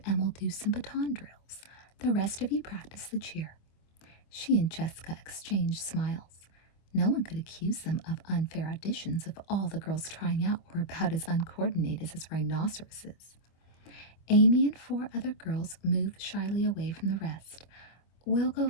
and we'll do some baton drills. The rest of you practice the cheer. She and Jessica exchanged smiles. No one could accuse them of unfair auditions if all the girls trying out were about as uncoordinated as rhinoceroses. Amy and 4 other girls moved shyly away from the rest. We'll go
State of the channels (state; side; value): late; right; 25 ms